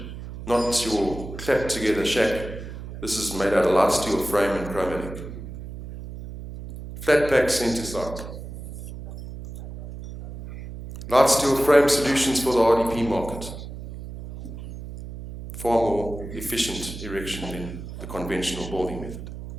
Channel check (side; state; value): right; noise; hum, 11 dB below the sound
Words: not your clapped together shack. This is made out of light steel frame and chromatic. Flat pack centre site. Light steel frame solutions for the RDP market. Far more efficient erection than the conventional building method.